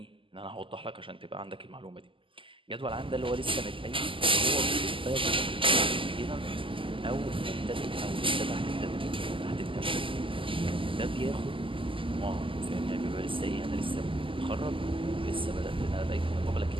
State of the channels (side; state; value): left; late; 0.25 ms